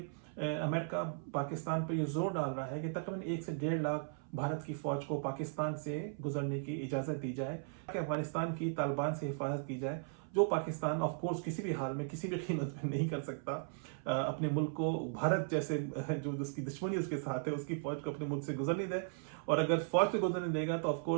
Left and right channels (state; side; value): silent; left; 53 dB below the other